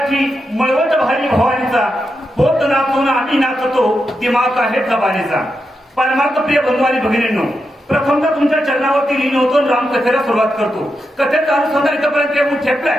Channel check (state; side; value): normal; both; correlation 0.86